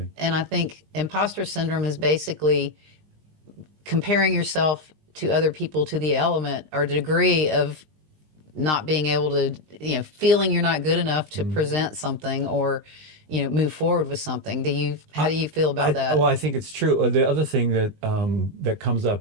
And I think imposter syndrome is basically comparing yourself to other people to the element or degree of not being able to, feeling you're not good enough to present something or, move forward with something. How do you feel about that? Well, I think it's true. The other thing that comes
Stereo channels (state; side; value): late; left; 20 ms